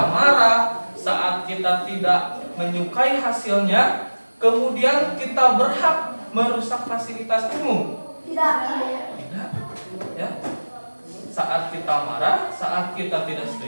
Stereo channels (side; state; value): both; inverted; correlation -1.00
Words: marah, saat kita tidak menyukai hasilnya, kemudian kita berhak merusak fasilitas umum? Tidak. Tidak. Ya. Saat kita marah, saat kita tidak